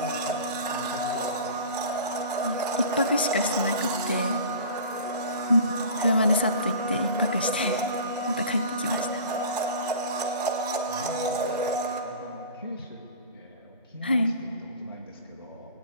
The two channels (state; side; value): inverted; both; correlation -0.39